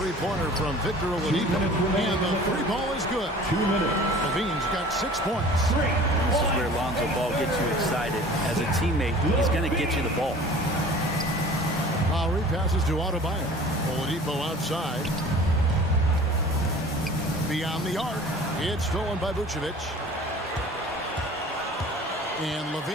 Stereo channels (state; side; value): normal; both; correlation 0.45